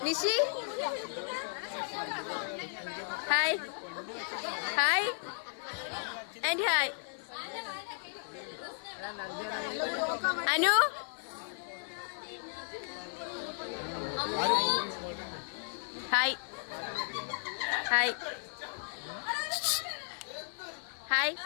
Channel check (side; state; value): right; silent; 55 dB below the other